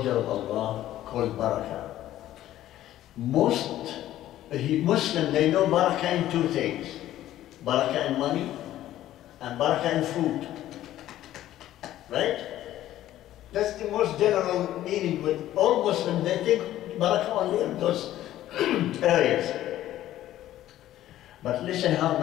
of Allah called Baraka. Most Muslims, they know Baraka in two things. Baraka in money and Baraka in food. Right? That's the most general meaning with all Muslims. They think Baraka only in those areas. But listen how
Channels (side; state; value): right; quieter; 13.4 dB